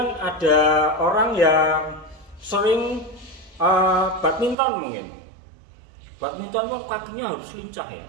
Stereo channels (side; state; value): left; drops out; at 4.5 s